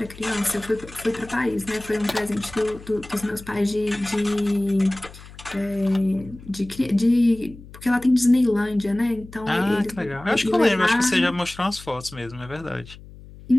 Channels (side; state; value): left; noise; hum, 18 dB below the sound